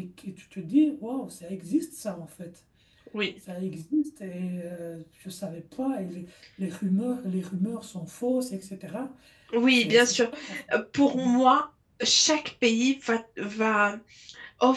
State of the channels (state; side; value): identical; both; correlation 1.00